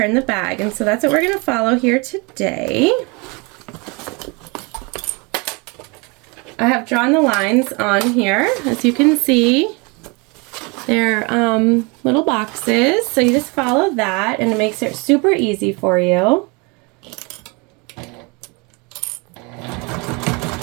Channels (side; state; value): left; quieter; 29.2 dB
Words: the bag. And so that's what we're going to follow here today. I have drawn the lines on here, as you can see. They're little boxes, so you just follow that and it makes it super easy for you.